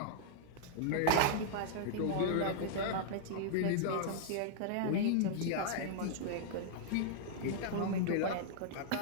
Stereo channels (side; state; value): both; different; correlation -0.01